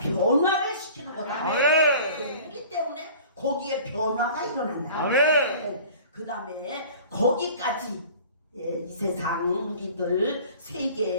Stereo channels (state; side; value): inverted; both; correlation -0.45